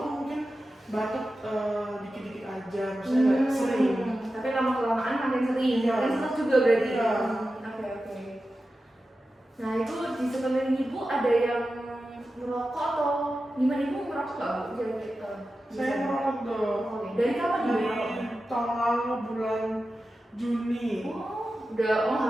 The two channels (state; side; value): normal; both; correlation 0.93